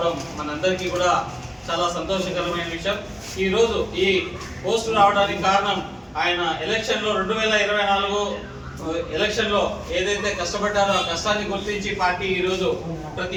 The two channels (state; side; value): identical; both; correlation 1.00